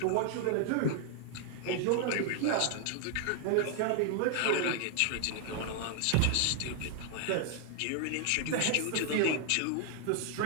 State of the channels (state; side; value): different; both; correlation 0.00